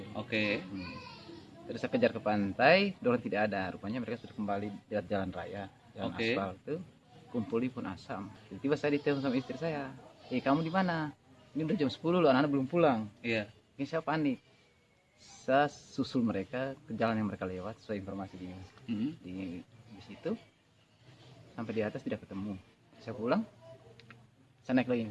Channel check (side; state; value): both; identical; correlation 1.00